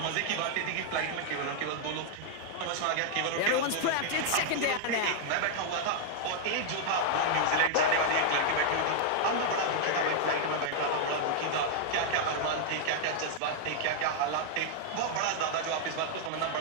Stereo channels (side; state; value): both; different; correlation -0.01